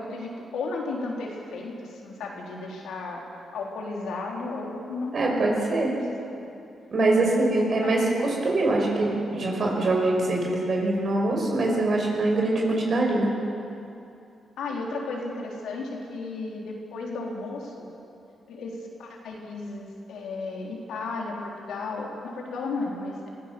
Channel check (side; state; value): both; normal; correlation 0.81